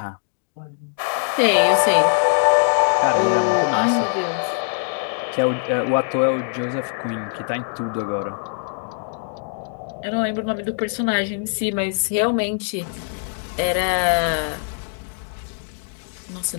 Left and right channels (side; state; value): right; silent; 64 dB below the other